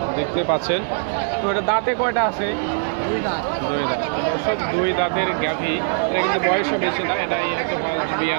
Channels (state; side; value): silent; left; digital silence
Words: দেখতে পাচ্ছেন। তো এটা দাঁতে কয়টা আছে? 2 দাঁত। দর্শক, 2 দাঁতের গাভী। এটা কিন্তু বয়সও বেশি না, এটাই হচ্ছে